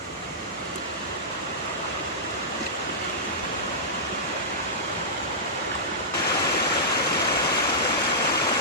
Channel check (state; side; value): normal; both; correlation -0.14